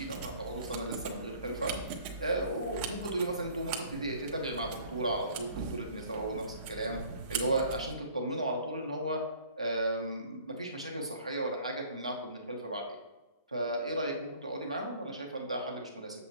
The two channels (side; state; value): both; inverted; correlation -0.52